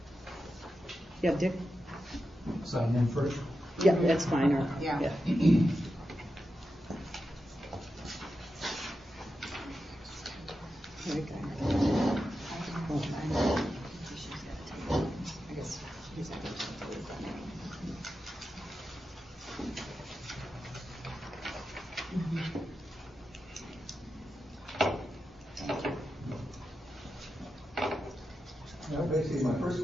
Yeah, Dick? Sign in first. Yeah, that's fine. Or, Yeah. Very good. I guess he's not going to do that. Well, basically, my first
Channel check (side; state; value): both; normal; correlation 0.90